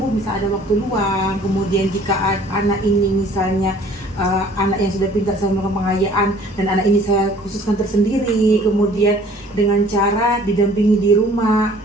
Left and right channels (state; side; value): normal; both; correlation 0.53